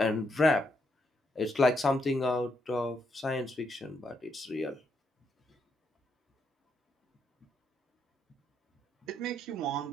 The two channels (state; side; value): normal; both; correlation 0.78